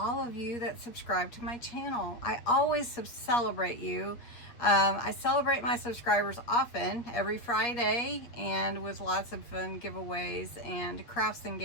of you that subscribe to my channel. I always celebrate you. I celebrate my subscribers often, every Friday, and with lots of fun giveaways and crafts and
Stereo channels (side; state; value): right; late; 8.4 ms